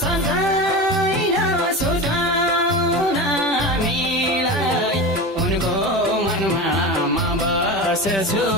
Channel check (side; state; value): both; normal; correlation 0.26